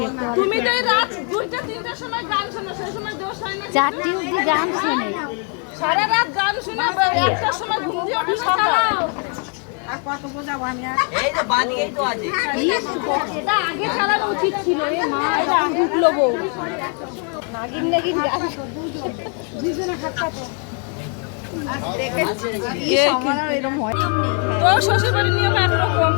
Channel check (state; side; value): quieter; right; 39.7 dB